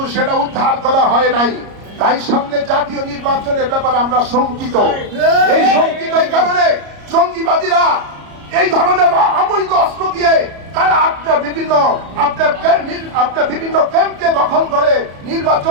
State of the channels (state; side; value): late; left; 34 ms